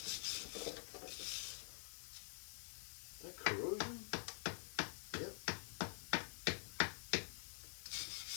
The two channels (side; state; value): right; silent; digital silence